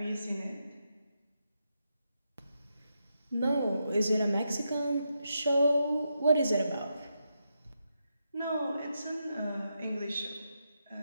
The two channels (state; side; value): inverted; both; correlation -0.84